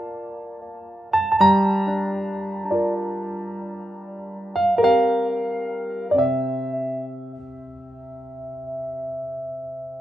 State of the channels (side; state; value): both; normal; correlation 0.88